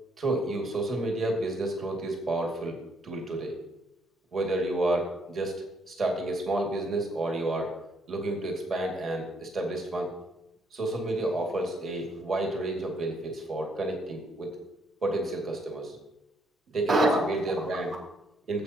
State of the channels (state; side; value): normal; both; correlation 0.70